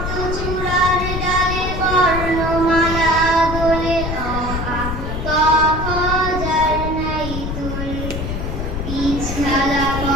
চূড়ার ডালে বর্ণমালা দোলে, অ আ ক খ যার নাই তুল। বীজ ঢালা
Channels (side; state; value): left; noise; rumble, 4 dB below the sound